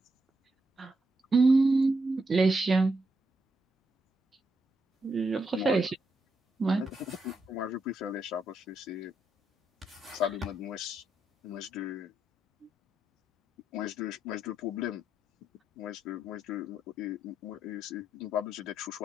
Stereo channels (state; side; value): normal; both; correlation 0.81